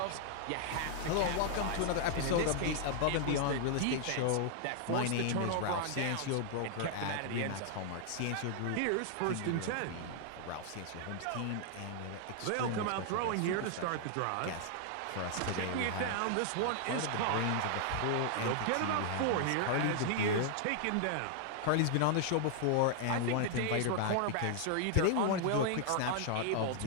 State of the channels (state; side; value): different; both; correlation 0.00